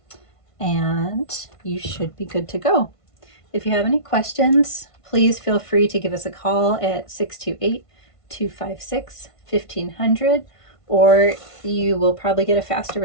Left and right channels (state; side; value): late; right; 1.5 ms